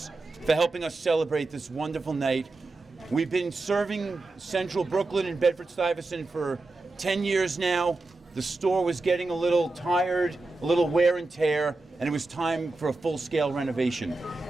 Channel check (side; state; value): left; quieter; 3.2 dB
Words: celebrate this wonderful night. We've been serving Central Brooklyn and Bedford-Stuyvesant for 10 years now. The store was getting a little tired, a little wear and tear, and it was time for a full-scale renovation.